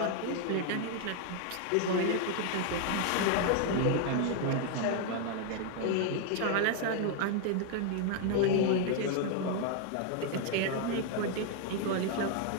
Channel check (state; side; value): different; both; correlation 0.00